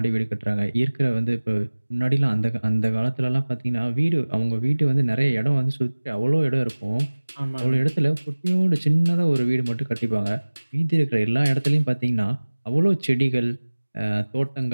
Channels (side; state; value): both; inverted; correlation -1.00